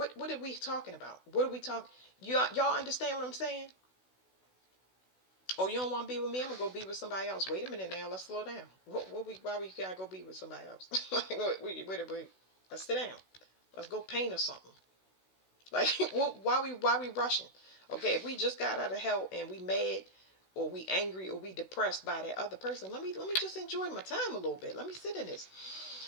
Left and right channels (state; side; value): late; right; 16 ms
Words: are we talking about? What are we talking? Y'all understand what I'm saying? Oh, you don't want to be with me? I'm gonna go be with somebody else. Wait a minute now. Let's slow down. Why we gotta go be with somebody else? Wait. Let's sit down. Let's go paint or something. Like, why we rushing? Okay, if we just got out of hell and we mad or we angry or we depressed by that other person, let me just enjoy my time a little bit. Let me sit in this.